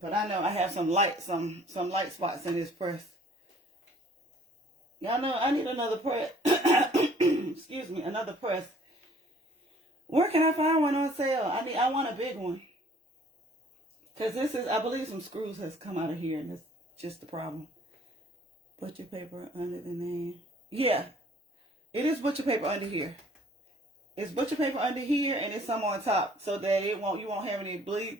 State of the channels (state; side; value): normal; both; correlation 0.56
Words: But I know I have some light spots in this press. Y'all know I need another press. Excuse me, another press. Where can I find one on sale? I want a big one. Because this is, I believe some screws has come out of here, and that's just the problem. Butcher paper under the name. Yeah, it is butcher paper under here. It's butcher paper under here, and it's some on top, so that you won't have any bleed